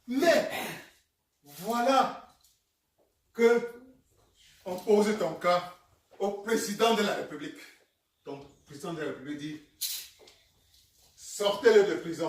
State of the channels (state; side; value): identical; both; correlation 1.00